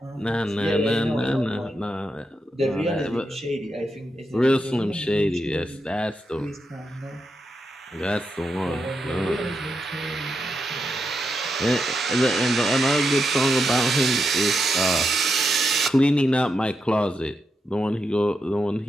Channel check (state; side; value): normal; both; correlation 0.84